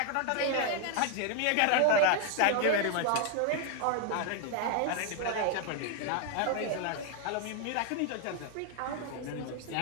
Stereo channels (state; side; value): different; both; correlation 0.00